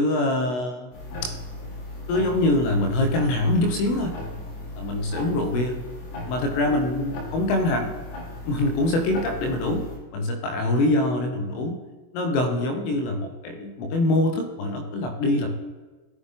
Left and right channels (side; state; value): right; late; 24 ms